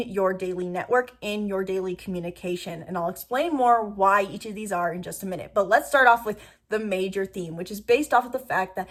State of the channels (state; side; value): identical; both; correlation 1.00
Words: daily network, in your daily communication. And I'll explain more why each of these are in just a minute. But let's start off with the major theme, which is based off of the fact that